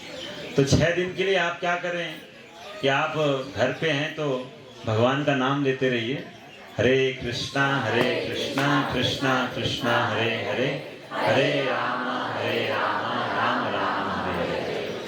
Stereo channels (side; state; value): both; identical; correlation 1.00